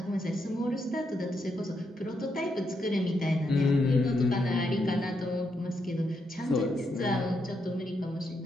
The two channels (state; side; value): normal; both; correlation 0.81